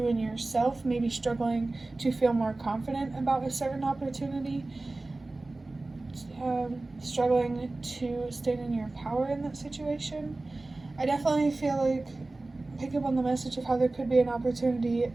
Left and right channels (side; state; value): left; quieter; 3.1 dB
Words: and yourself, maybe struggling to feel more confident about a certain opportunity, struggling to stand in your power in that situation. I definitely feel like, pick up on the message of how there could be an opportunity